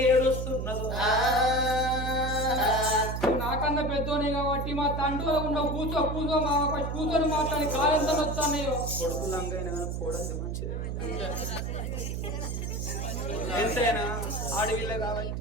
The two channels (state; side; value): noise; right; hum, 3 dB below the sound